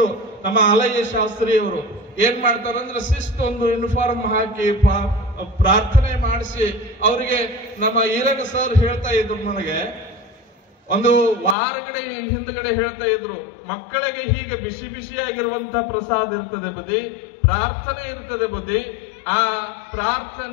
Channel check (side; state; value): right; drops out; at 11.6 s